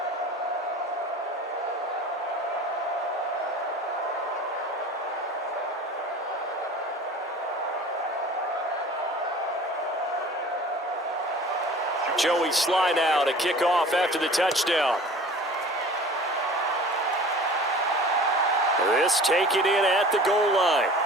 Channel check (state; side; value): normal; both; correlation 0.43